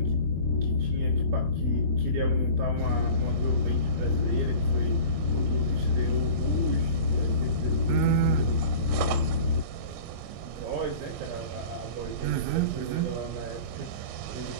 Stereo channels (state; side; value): late; left; 23 ms